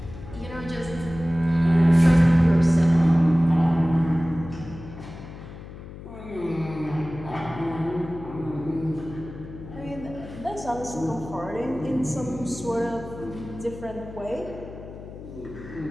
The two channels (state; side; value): noise; left; hum, 14 dB below the sound